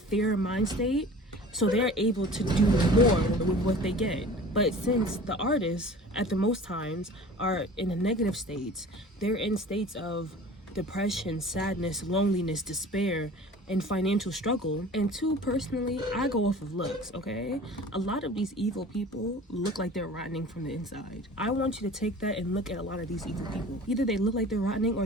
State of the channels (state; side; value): normal; both; correlation 0.42